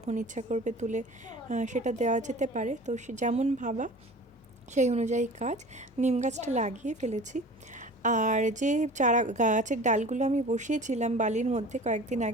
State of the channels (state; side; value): normal; both; correlation 0.41